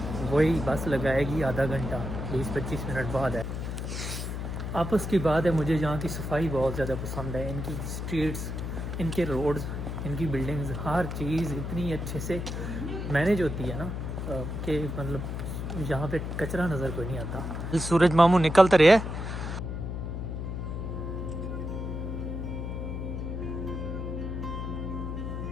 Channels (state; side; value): noise; left; hum, 4 dB below the sound